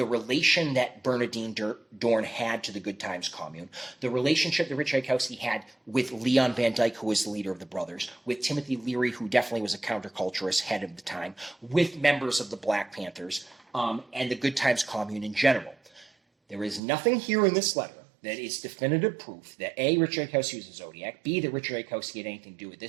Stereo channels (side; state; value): left; drops out; at 16.8 s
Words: relation that Bernadine Dorn had to the Good Times Commune, the relationship that Rich Tchaikovsky had with Leon Van Dyke, who was the leader of the Brothers, with Timothy Leary, who definitely was a counterculturist head of the time, with members of the Black Panthers, and the Good Times Commune in general. There is nothing here in this letter that is definitive proof that A, Richard Tchaikovsky was a Zodiac, B, that Richard Tchaikovsky had anything to do with